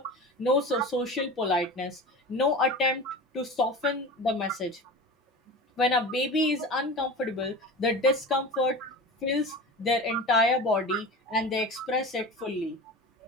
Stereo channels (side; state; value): both; normal; correlation 0.32